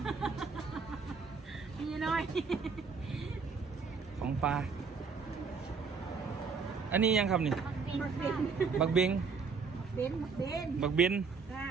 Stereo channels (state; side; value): quieter; left; 5.2 dB